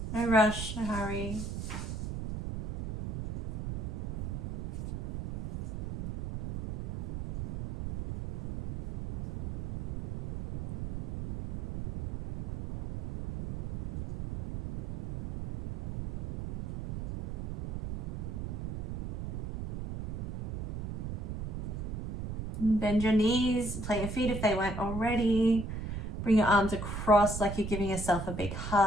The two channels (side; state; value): right; noise; rumble, 6 dB below the sound